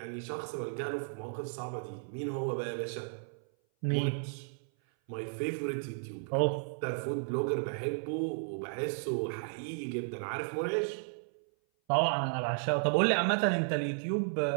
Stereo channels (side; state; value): left; silent; 55 dB below the other